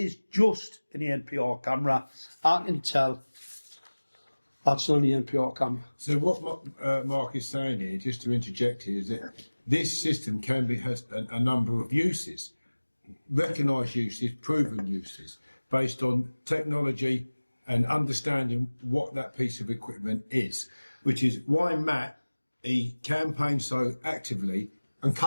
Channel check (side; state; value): both; inverted; correlation -1.00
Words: just an NPR camera, I can tell that's not an NPR camera. So what Mark is saying here, just to interject here, is that this system has a number of uses, recognised uses, proven uses, based on technology and understanding what that piece of equipment is, which is why Matt, he campaigned so actively and